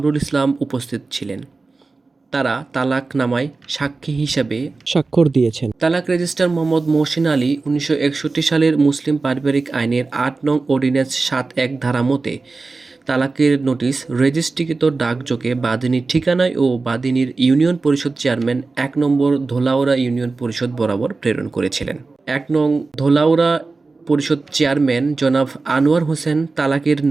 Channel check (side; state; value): left; quieter; 3.8 dB